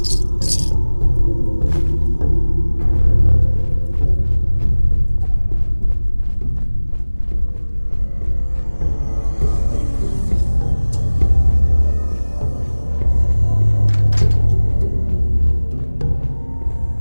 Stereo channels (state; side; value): inverted; both; correlation -1.00